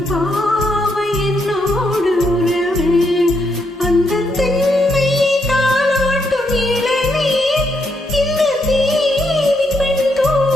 பாவை என்னோடு உறவு. அந்த தென்னை தாளாட்டும் இளநீர், இந்த தேவி பெண்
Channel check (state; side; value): normal; both; correlation 0.78